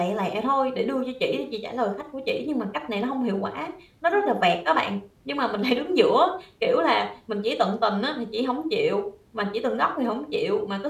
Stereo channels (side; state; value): both; identical; correlation 1.00